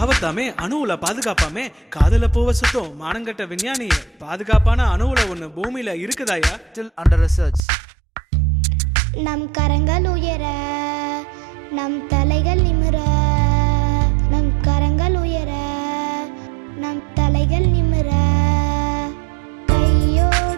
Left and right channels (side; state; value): left; drops out; at 7.6 s